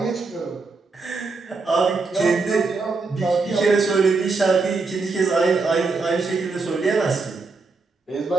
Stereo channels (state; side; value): quieter; left; 4.1 dB